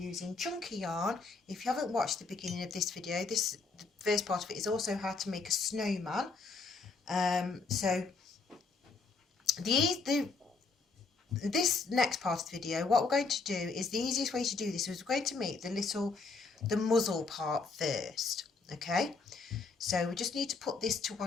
chunky yarn. If you haven't watched the beginning of this video, the first part of it is also how to make a snowman. So this next part of the video, what we're going to do is the easiest way to do this is we're going to make the muzzle part first. Okay, so we just need to put this to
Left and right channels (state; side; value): quieter; right; 4.2 dB